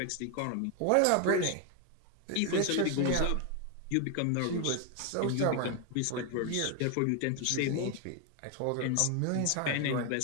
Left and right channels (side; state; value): both; different; correlation 0.01